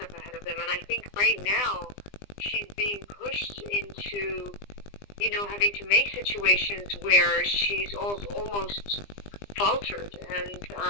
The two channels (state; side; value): late; right; 20 ms